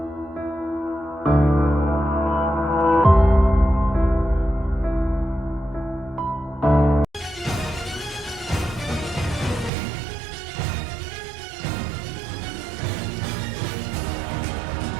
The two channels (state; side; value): drops out; left; at 9.7 s